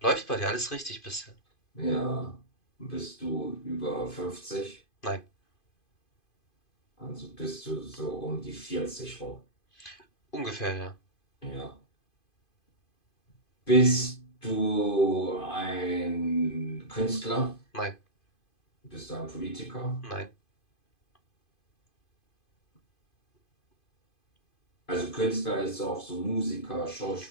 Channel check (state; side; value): late; right; 2.5 ms